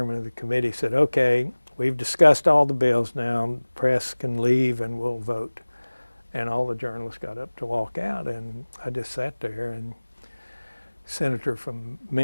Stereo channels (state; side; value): inverted; both; correlation -1.00